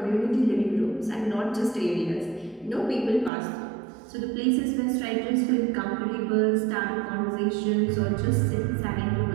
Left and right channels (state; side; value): drops out; left; at 3.3 s